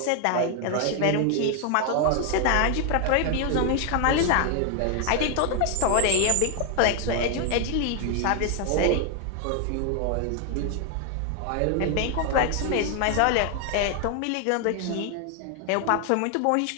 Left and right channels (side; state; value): both; different; correlation 0.00